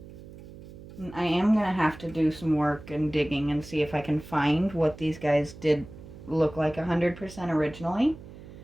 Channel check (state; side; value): noise; right; hum, 16 dB below the sound